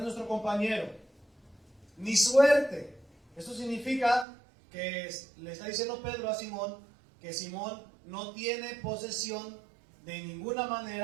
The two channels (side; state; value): left; drops out; at 4.2 s